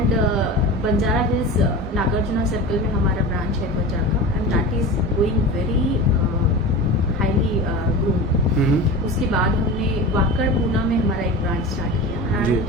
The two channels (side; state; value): both; normal; correlation 0.30